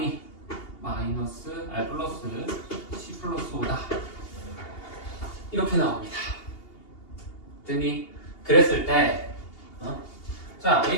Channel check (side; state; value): right; late; 2.8 ms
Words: 마이너스 플러스 10 플러스 5다. 이렇게 나옵니다. 됐니? 그랬을 때 자